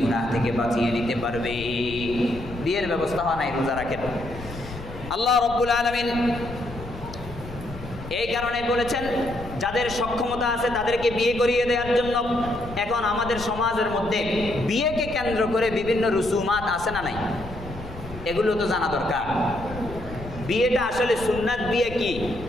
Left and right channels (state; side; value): noise; left; rumble, 13 dB below the sound